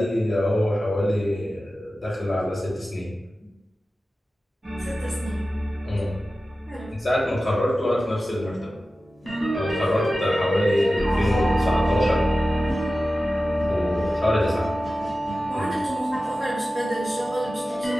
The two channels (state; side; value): normal; both; correlation 0.95